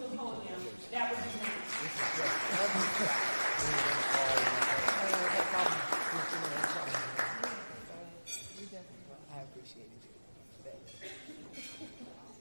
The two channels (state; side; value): inverted; both; correlation -1.00